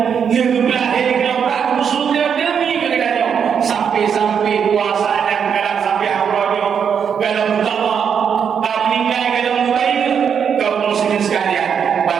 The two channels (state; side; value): quieter; left; 7.4 dB